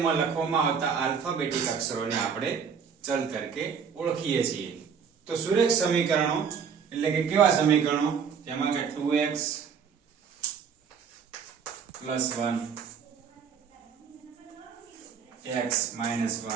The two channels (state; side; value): quieter; left; 6.8 dB